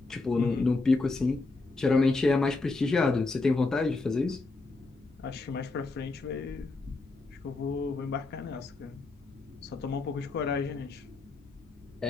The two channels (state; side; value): quieter; right; 3.5 dB